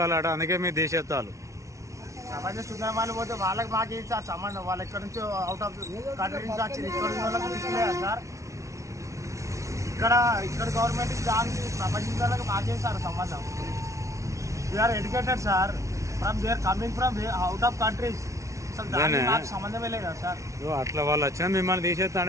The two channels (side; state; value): left; late; 0.14 ms